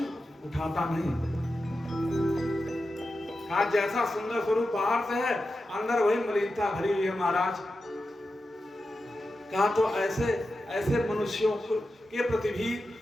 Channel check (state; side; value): normal; both; correlation 0.91